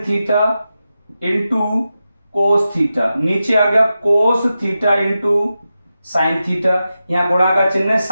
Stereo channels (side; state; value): both; inverted; correlation -0.91